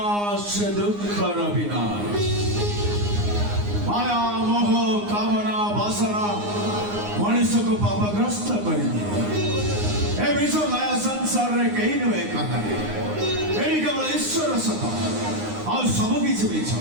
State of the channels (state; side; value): late; left; 9.7 ms